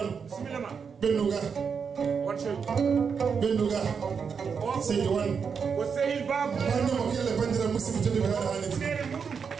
ɓennuga Seydi Wan wannemo kelle bandira musidɓe tedduɓe haɗa haaliti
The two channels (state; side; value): quieter; left; 6.2 dB